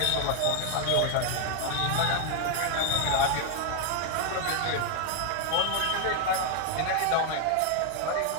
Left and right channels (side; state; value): both; different; correlation 0.00